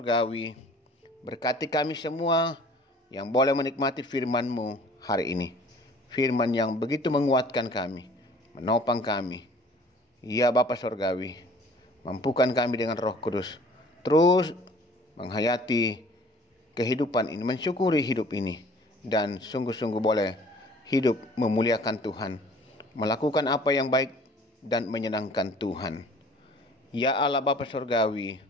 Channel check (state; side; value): normal; both; correlation 0.51